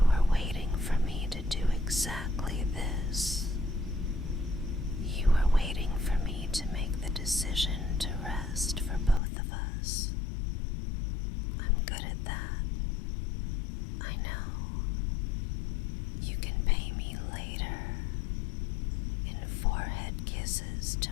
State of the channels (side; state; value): right; drops out; at 9.2 s